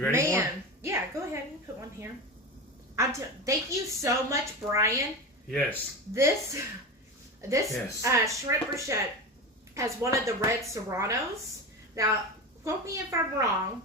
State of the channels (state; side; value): normal; both; correlation 0.24